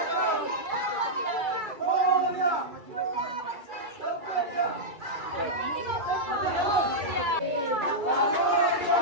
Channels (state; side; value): late; left; 2.3 ms